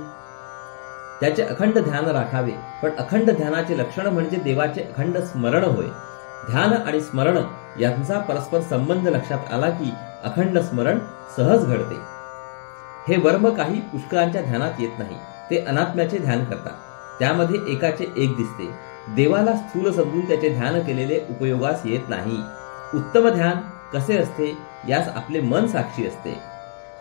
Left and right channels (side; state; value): right; silent; digital silence